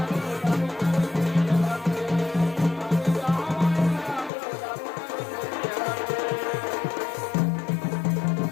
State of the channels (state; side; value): drops out; right; at 4.3 s